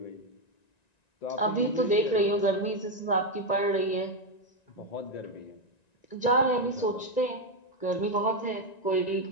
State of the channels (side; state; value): right; late; 1.9 ms